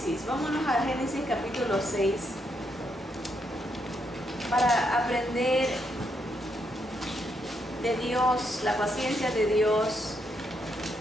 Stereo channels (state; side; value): normal; both; correlation 0.78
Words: vámonos a Génesis capítulo 6, para aprender de Dios, la paciencia de Dios